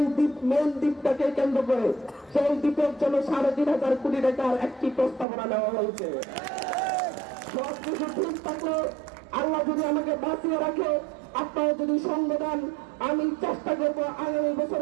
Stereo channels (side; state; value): left; drops out; at 5.2 s